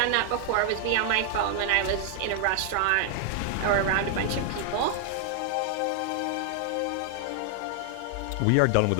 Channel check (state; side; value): different; both; correlation 0.00